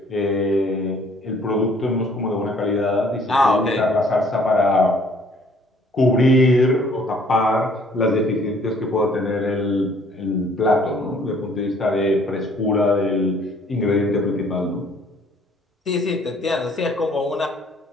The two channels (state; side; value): normal; both; correlation 0.59